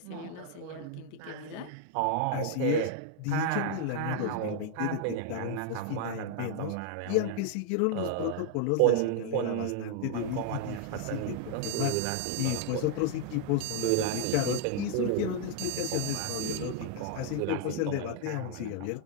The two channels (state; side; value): different; both; correlation 0.00